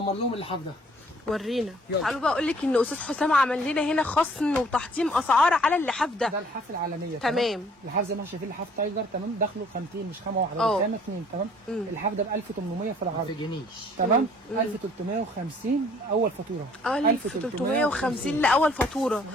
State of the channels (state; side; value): normal; both; correlation 0.58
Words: لهم اللحاف ده. ورينا. تعالوا بقى اقول لك ان استاذ حسام عمل لنا هنا خصم وتحطيم اسعار على اللحاف ده. ده اللحاف العالميه. تمام. اللحاف زي ما احنا شايفين لحاف تايجر تمام، داخله خامتين مش خامه واحده، ده خامه اثنين تمام. اللحاف ده ب 1800 في العرض. ما تجنيش تمام. 1350 اول فاتوره. 1350 لاول فاتوره.